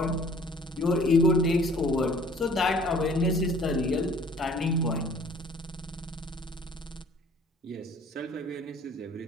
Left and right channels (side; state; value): both; normal; correlation 0.53